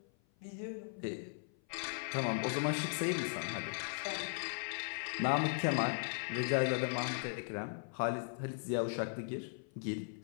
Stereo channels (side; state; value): right; silent; 52 dB below the other